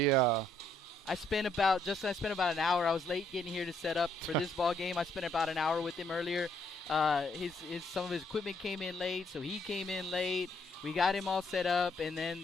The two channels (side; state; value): both; normal; correlation 0.70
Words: I spent about an hour. I was late getting here to set up for this ball game. I spent about an hour with him earlier. Some of his equipment came in late, so he came in late. We got him all set up, and